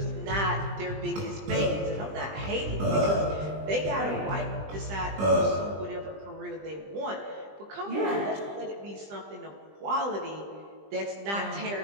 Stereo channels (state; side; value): late; left; 20 ms